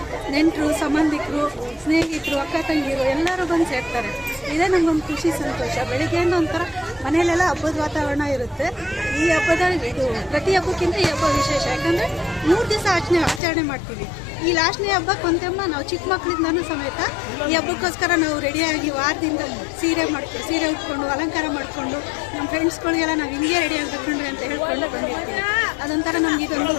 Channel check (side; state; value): right; drops out; at 13.4 s